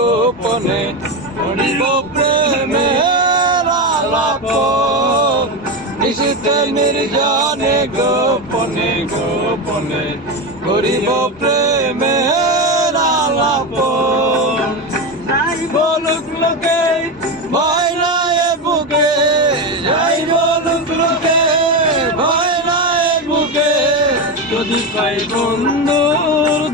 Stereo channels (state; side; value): normal; both; correlation 0.16